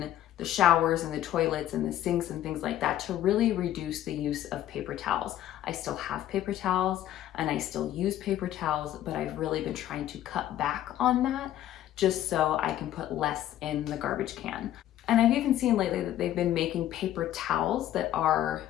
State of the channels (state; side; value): quieter; right; 12.5 dB